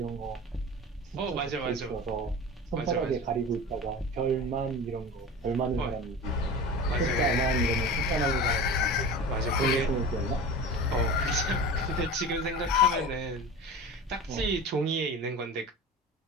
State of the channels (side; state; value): both; normal; correlation 0.33